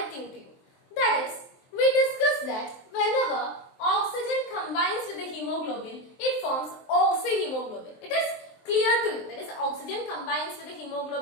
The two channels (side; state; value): right; late; 23 ms